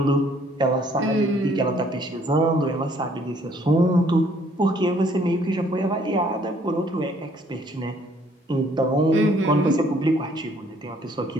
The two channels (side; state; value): both; normal; correlation 0.62